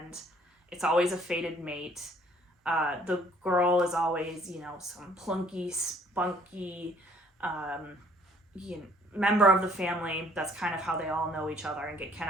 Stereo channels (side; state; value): both; normal; correlation 0.60